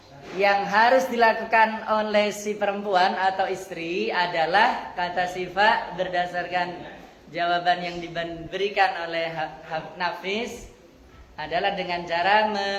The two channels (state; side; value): identical; both; correlation 1.00